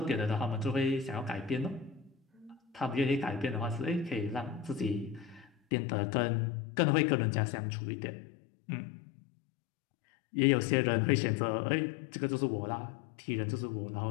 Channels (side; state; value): right; drops out; at 5.5 s